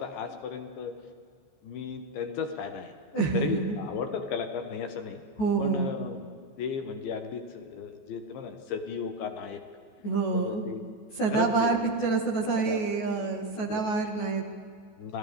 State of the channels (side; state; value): right; late; 14 ms